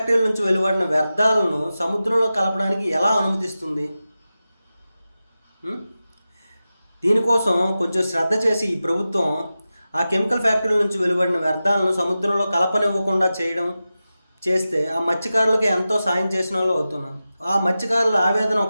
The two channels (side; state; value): both; inverted; correlation -0.94